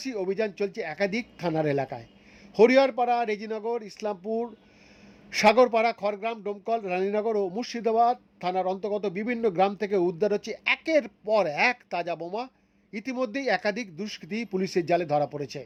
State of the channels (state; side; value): identical; both; correlation 1.00